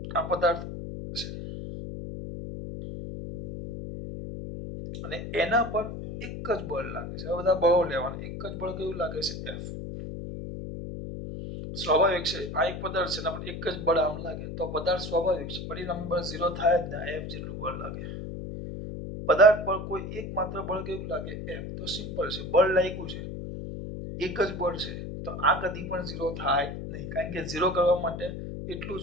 આ પદાર્થ છે અને એના પર એક જ બળ લાગે છે. હવે બધા બળો લેવાના. એક જ બળ કેવું લાગે છે? F. સ્વાભાવિક છે, આ એક પદાર્થ છે, એના પર એક જ બળ આમ લાગે તો પદાર્થ સ્વાભાવિક છે, પરિણામી બળ 0 થાય જ ને. F જેટલું બળ લાગે. પદાર્થ પર કોઈ એક માત્ર બળ કેવું લાગે? F. તો સિમ્પલ છે, બળ લાગ્યું છે, એક જ બળ છે, તો આ કદી પણ 0 થાય નહીં, કારણ કે 0 કરવા માટે એટલું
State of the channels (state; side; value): noise; left; hum, 7 dB below the sound